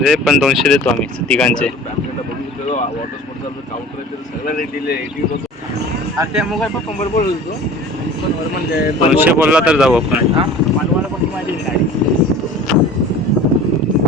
आहे पण 200 देतो आम्ही तिघांचे. वॉटर स्पोर्ट काउंटर सगळ्या रेट दिले. त्या मोबाईल पण कंबर बोलतो म्हणजे 200 बोलला तर जाऊ आपण. मानवाला पण माहिती गाडी.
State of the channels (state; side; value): normal; both; correlation 0.42